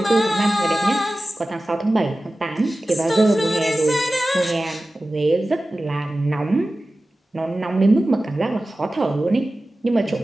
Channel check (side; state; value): both; normal; correlation 0.96